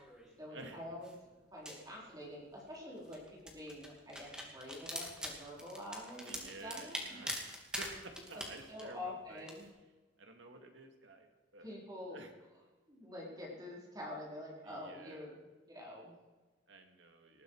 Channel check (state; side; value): normal; both; correlation 0.27